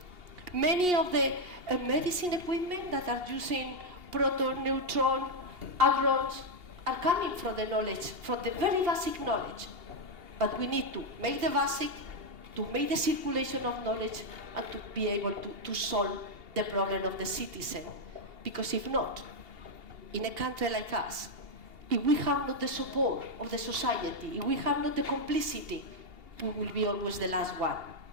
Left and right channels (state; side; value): late; left; 2.8 ms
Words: Many of the medicine equipment that are using proton, neutron, hadrons are coming from the knowledge, from the very basic knowledge. But we need to make the basic, to make the circulation of knowledge, and to be able to solve the problem of the citizen. Because if not, in a country like us, if we have not the support of the society, if we have not the complicity, we will be always the last one.